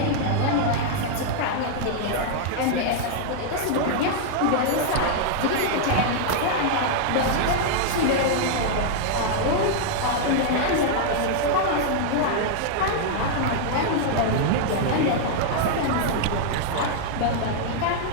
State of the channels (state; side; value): different; both; correlation -0.01